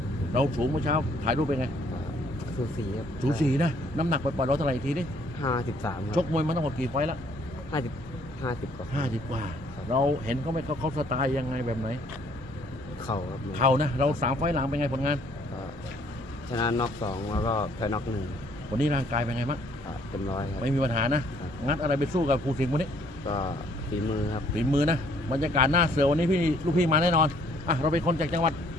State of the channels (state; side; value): normal; both; correlation 0.63